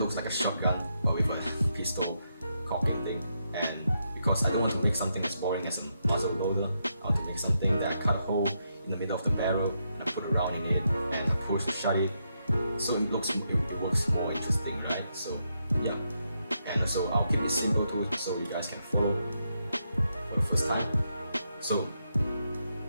like a shotgun, but with a pistol cocking thing. And because I don't want to make something as boring as a muzzle loader, I want to make something that I cut a hole in the middle of the barrel and I put a round in it and I push to shut it, so it works more interesting, right? So yeah, and and so I'll keep it simple too, so you guys can follow for the first time. So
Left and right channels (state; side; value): inverted; both; correlation -0.81